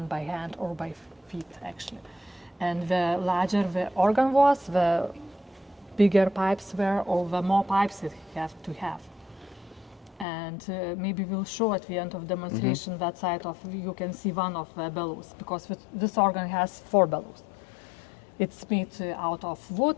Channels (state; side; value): drops out; right; at 10.2 s